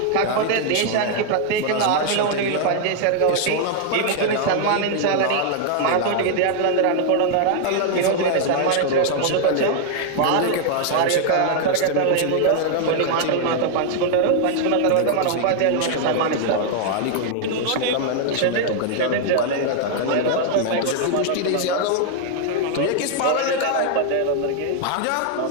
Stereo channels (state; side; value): different; both; correlation 0.00